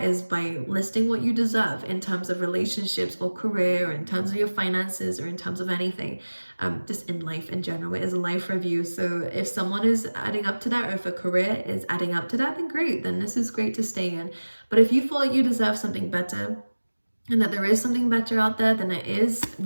is by listing what you deserve in terms of relationships or career, or in terms of your finances, or in terms of anything, just in life in general. It is a life review. So if someone is adding up to that, or if a career is adding up to that, then great, then this is great to stay in. But if you feel like you deserve something better, and that there is something better out there, then it is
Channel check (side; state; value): both; inverted; correlation -1.00